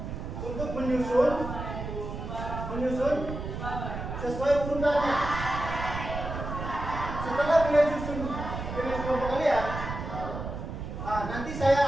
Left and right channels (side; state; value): right; noise; rumble, 6 dB below the sound